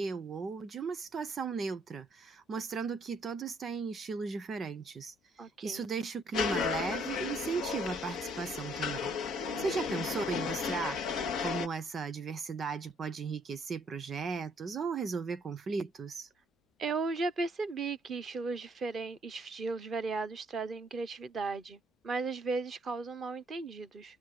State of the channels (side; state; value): both; normal; correlation 0.66